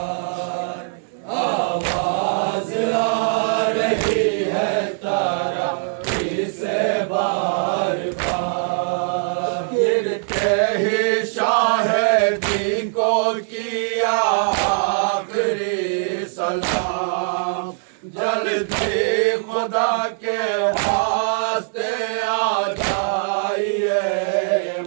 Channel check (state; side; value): silent; left; 65 dB below the other